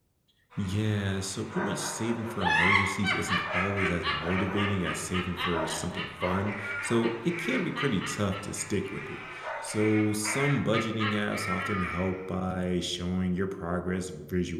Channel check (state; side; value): identical; both; correlation 1.00